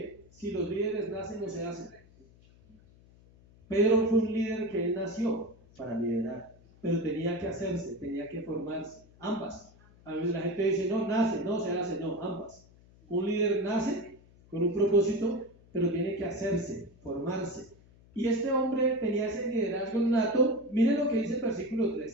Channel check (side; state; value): left; noise; hum, 26 dB below the sound